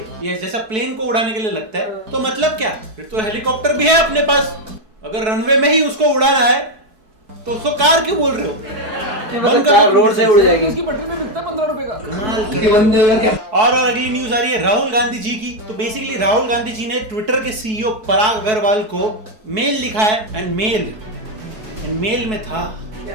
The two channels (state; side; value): late; left; 4.6 ms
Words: ये जैसा प्लेन को उड़ाने के लिए लगता है। तो मतलब क्या, फिर तो हेलीकॉप्टर भी है अपने पास। अगर रनवे में ही उसको उड़ाना है तो उसको कार क्यों बोल रहे हो? कार रोड से उड़ जाएगी। उसकी पटरी में बिकता 15 रुपए का। कमाल। और अगली न्यूज आ रही है राहुल गांधी जी की। तो बेसिकली राहुल गांधी जी ने ट्विटर के सीईओ पराग अग्रवाल को मेल लिखा है। एंड मेल में था